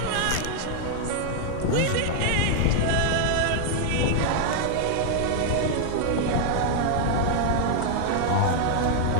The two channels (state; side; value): different; both; correlation 0.00